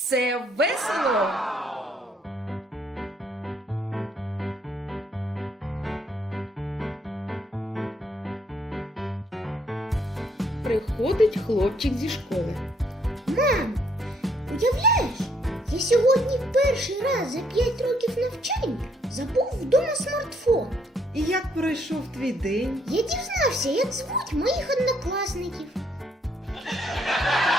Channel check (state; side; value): normal; both; correlation 0.69